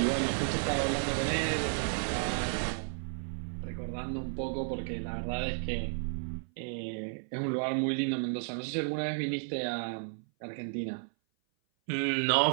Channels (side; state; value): left; silent; 56 dB below the other